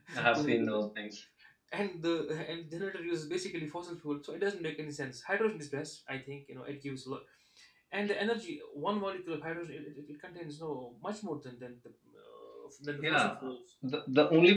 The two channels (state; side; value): identical; both; correlation 1.00